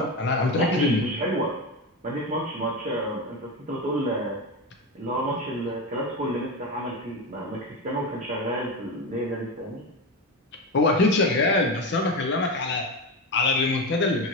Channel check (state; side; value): normal; both; correlation 0.18